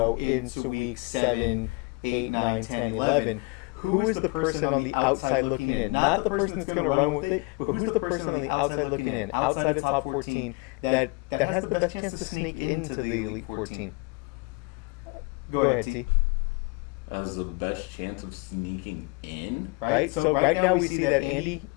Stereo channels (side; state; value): right; quieter; 27.1 dB